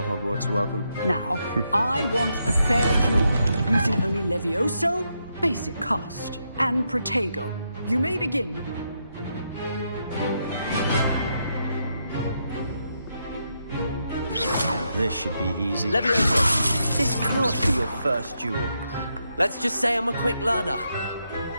Hogwarts welcome. Now, I want a fair duel, using only Levioso, basic cast, and Protego. You may begin. This should be easy. Levioso! This can't be your first duel. Let's just say I'm a quick learner.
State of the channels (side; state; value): both; inverted; correlation -0.81